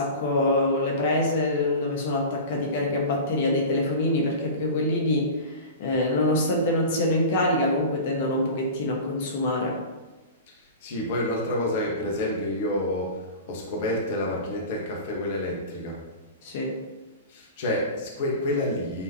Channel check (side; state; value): both; inverted; correlation -0.33